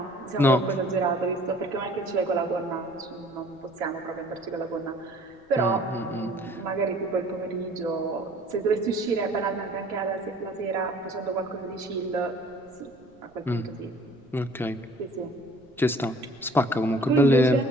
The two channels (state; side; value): noise; right; rumble, 30 dB below the sound